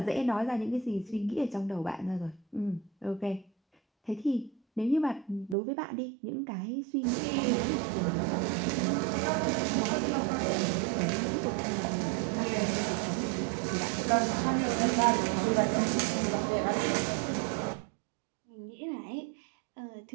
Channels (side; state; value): left; drops out; at 5.6 s